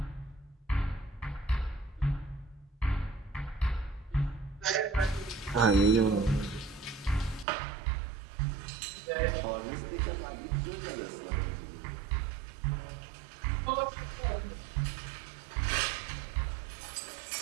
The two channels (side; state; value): left; drops out; at 7.5 s